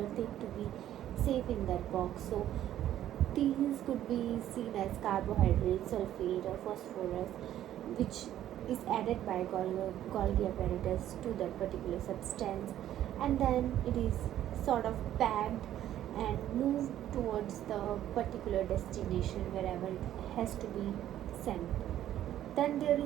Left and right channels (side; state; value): left; quieter; 12.0 dB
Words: thing to be safe in that box. So these could be seen as carbohydrates, sulfate or phosphorus, which is added by Golgi apparatus to that particular substance, and then it is sort of packed and moved towards the particular destination wherever it has to be sent. Then there